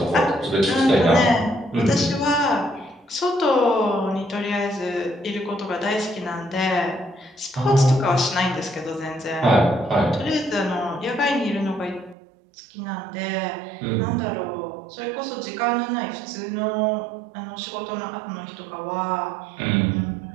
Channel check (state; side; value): drops out; left; at 12.2 s